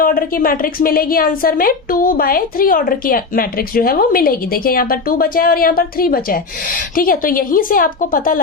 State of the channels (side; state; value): right; quieter; 4.4 dB